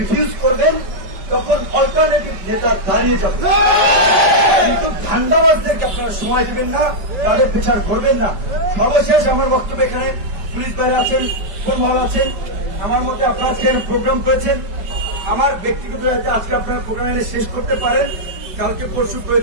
করবেন, তখন অল্টারনেটিভ নেতা দাঁড়িয়ে যাবে। কিন্তু ধান্দাবাজদেরকে আপনারা সময় দিবেন না, তাদের বিচার করবেন না। সর্বশেষ আমার বক্তব্য এখানে পুলিশ বাইরে আছেন, কোন মহল আছেন, আমার মধ্যে আপনারা প্রোগ্রাম করেছেন। আমার ব্যক্তিগত আজকে আপনারা প্রোগ্রাম এনে শেষ করতে পারেন, কালকে পরশু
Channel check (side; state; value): left; late; 5.2 ms